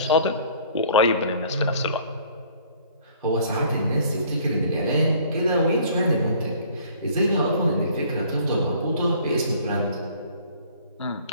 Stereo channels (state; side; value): inverted; both; correlation -0.54